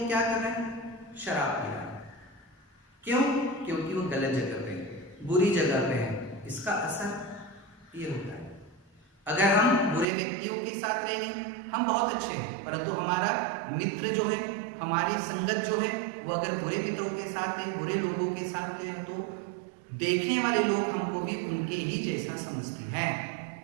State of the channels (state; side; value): drops out; left; at 10.1 s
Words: क्या कर रहा है? शराब पी रहा है। क्यों? क्योंकि वो गलत जगह पे है, बुरी जगह पे है। इसका असर ये होता है। अगर हम बुरे व्यक्तियों के साथ रहेंगे, हम बहुत अच्छे हैं, परंतु हमारा मित्र जो है, हमारी संगत जो है, वो अगर बुरे मित्रों के साथ है, बुरे लोगों के साथ है, तो देखने वाले लोग हमको भी उनके ही जैसा समझते हैं।